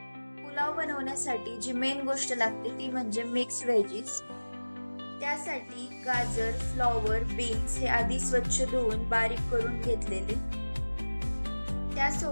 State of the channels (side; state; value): both; inverted; correlation -1.00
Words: पुलाव बनवण्यासाठी जी मेन गोष्ट लागते ती म्हणजे मिक्स व्हेजीस. त्यासाठी गाजर, फ्लॉवर, बीन्स हे आधी स्वच्छ धुवून बारीक करून घेतलेले.